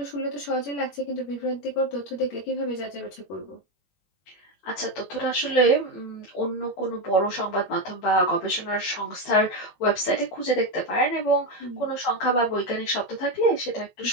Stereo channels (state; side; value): late; right; 21 ms